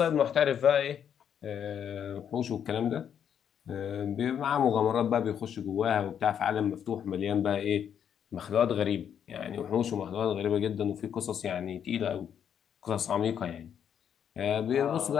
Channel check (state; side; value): quieter; right; 8.6 dB